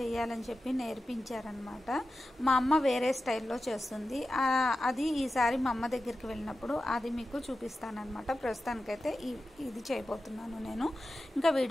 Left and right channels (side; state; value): both; normal; correlation 0.93